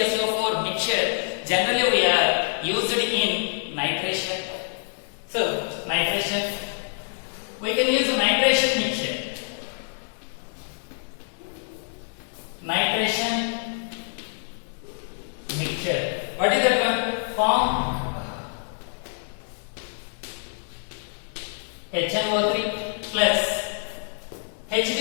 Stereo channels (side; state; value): right; silent; 61 dB below the other